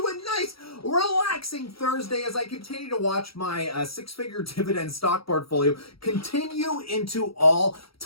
a nice, relaxing Thursday as I continue to watch my six-figure dividend stock portfolio continue into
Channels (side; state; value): right; late; 0.75 ms